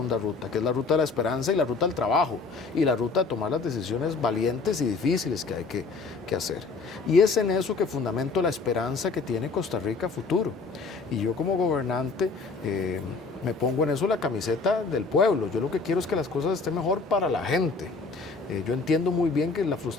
ruta, que es la ruta de la esperanza y la ruta del trabajo, y la ruta de tomar las decisiones valientes y difíciles que hay que hacer. Y es en eso que fundamento la esperanza que tiene Costa Rica a futuro. Y yo como gobernante me pongo en eso la camiseta del pueblo. Yo lo que quiero es que las cosas estén mejor para la gente. Yo entiendo muy bien que la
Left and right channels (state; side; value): quieter; right; 4.3 dB